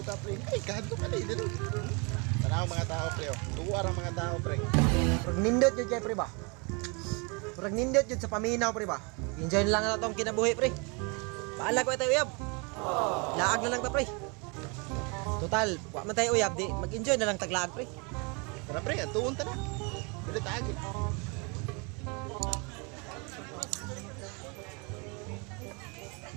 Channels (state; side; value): quieter; left; 31.4 dB